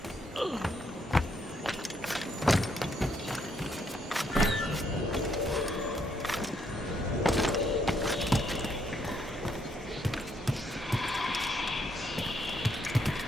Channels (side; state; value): both; normal; correlation 0.73